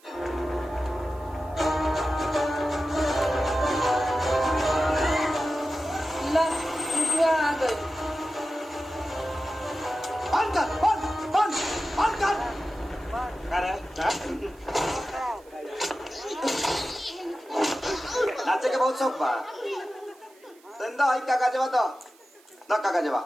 आ गई। बंद कर, बंद कर। नाचे के बहुत शौक बा। धंधा है काका जवा तो ना काका जवा।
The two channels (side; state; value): right; noise; hiss, 29 dB below the sound